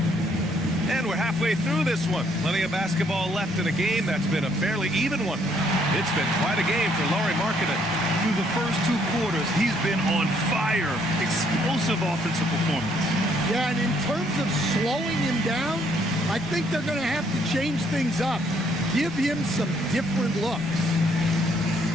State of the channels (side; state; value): both; normal; correlation 0.68